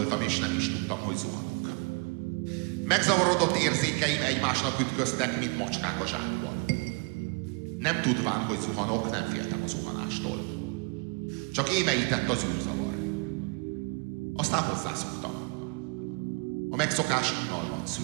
és nem is tudtam, hogy zuhanok. Megzavarodott érzékeim egymásnak ütköztek, mint macskák a zsákban. Nem tudván, hogy zuhanok, nem féltem a zuhanástól. Csak émeített az űrzavar. Aztán hozzászoktam. A megszokás unalmat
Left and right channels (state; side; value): quieter; left; 33.5 dB